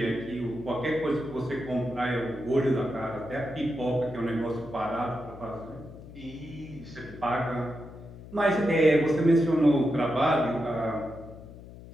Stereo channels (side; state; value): left; noise; hum, 16 dB below the sound